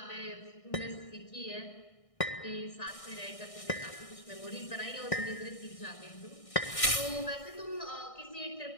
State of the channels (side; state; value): right; late; 1.6 ms